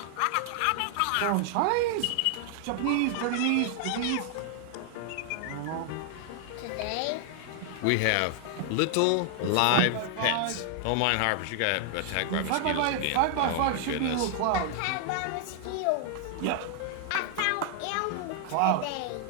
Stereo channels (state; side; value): different; both; correlation 0.00